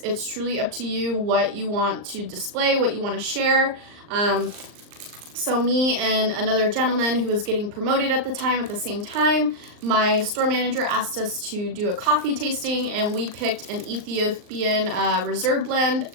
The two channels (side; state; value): left; late; 39 ms